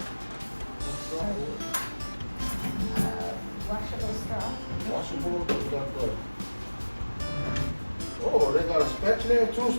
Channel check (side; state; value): both; inverted; correlation -1.00